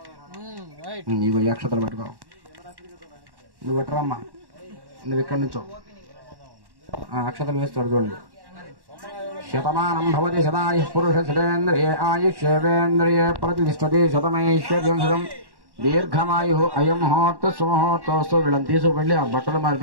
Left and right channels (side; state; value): left; late; 1.1 ms